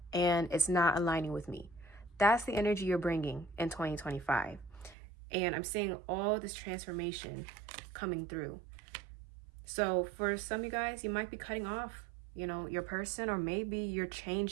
and it's not aligning with me. That's the energy you're bringing in 2025. And I'm seeing all this transformation coming through. So for some of you guys, you might be cutting off, your person, or maybe you're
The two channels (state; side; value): drops out; left; at 5.0 s